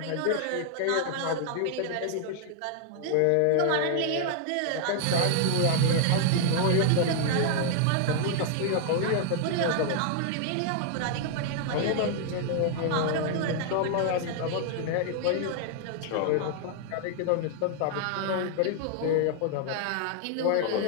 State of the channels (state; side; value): different; both; correlation 0.00